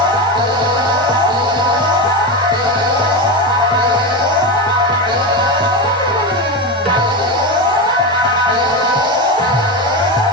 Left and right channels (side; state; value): both; normal; correlation 0.17